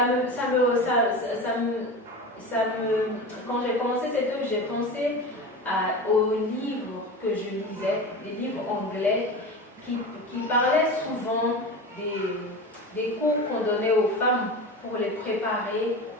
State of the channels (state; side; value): normal; both; correlation 0.29